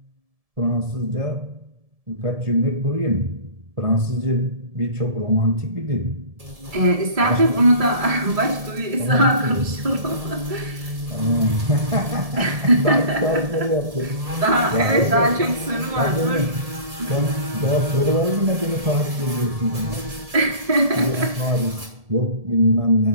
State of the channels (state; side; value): late; left; 1.7 ms